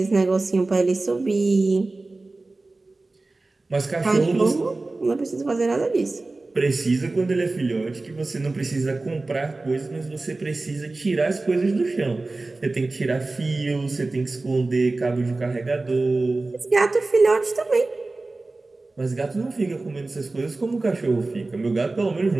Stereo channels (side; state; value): left; quieter; 3.3 dB